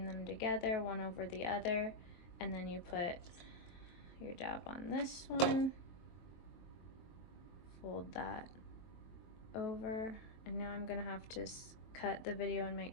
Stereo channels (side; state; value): right; late; 23 ms